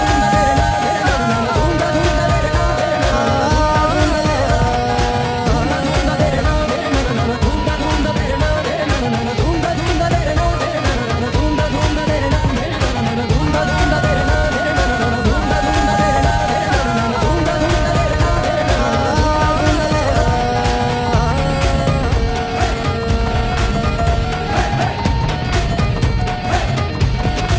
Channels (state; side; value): identical; both; correlation 1.00